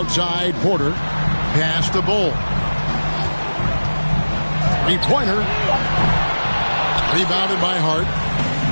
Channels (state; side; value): inverted; both; correlation -1.00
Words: Porter. Pass to Bull. Three-pointer. Rebounded by Hart.